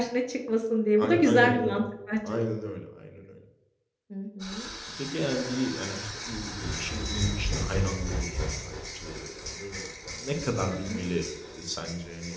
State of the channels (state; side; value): identical; both; correlation 1.00